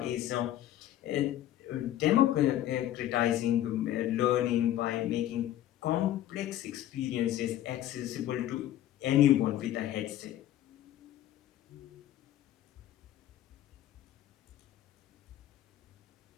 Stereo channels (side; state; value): right; quieter; 12.7 dB